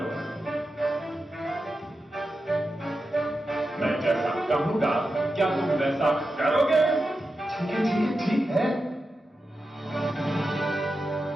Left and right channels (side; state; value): both; normal; correlation 0.90